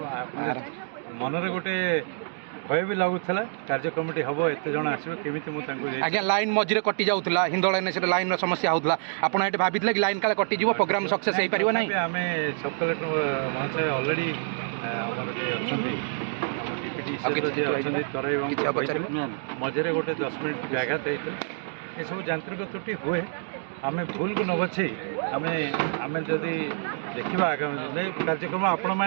ମନରେ ଗୋଟେ ଭୟ ବି ଲାଗୁଥିଲା କାର୍ଯ୍ୟକ୍ରମଟି ହେବ ଏତେ ଜଣ ଆସିବ କେମିତି ମୁଁ ତାଙ୍କୁ ଆଜ୍ଞା ଲାଇନ୍ ମଝିରେ କଟି ଯାଉଥିଲା ହିନ୍ଦୋଳ ଏନ୍ଏସିରେ ଲାଇନ୍ର ସମସ୍ୟା ହେଉଥିଲା ଆପଣ ଏଠି ଭାବିଥିଲେ କି ଲାଇନ୍ କାଳେ କଟିଯିବ ପ୍ରୋଗ୍ରାମ ସକ୍ସେସ୍ ହେଇପାରିବ ନାହିଁ? ଆମେ ସବ୍ କଲେକ୍ଟର ମହାଶୟ ଅଲରେଡ଼ି ଆମର ଯିଏ ଅଛନ୍ତି ଆମ ଡିପ୍ୟୁଟି ଯିଏ ଅଛନ୍ତି ତରାଇ ବାବୁଙ୍କୁ କହିଥିଲେ ମଝିରେ ଗୋଟେ 10 ମିନିଟ୍ ବ୍ୟାଘାତ ହେଇଥିଲା। ଏସବୁ ଯାନ୍ତ୍ରିକ ତ୍ରୁଟି ହୁଏ ଆମେ ଭୁଲକୁ ନ ବଛେଇ ଆମେ ଯଦି ଦେଖିବା ଆଗାମୀ ଦିନରେ କାର୍ଯ୍ୟକ୍ରମ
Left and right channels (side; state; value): left; silent; digital silence